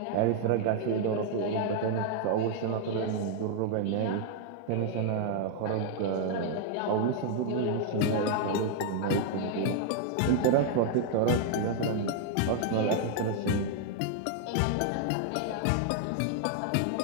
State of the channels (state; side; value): different; both; correlation 0.00